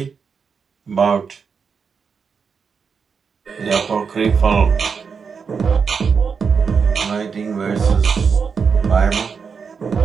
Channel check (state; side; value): quieter; left; 5.9 dB